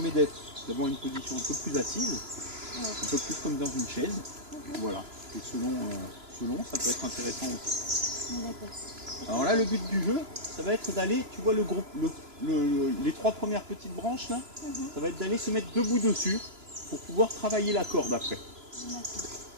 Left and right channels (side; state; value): left; late; 3.0 ms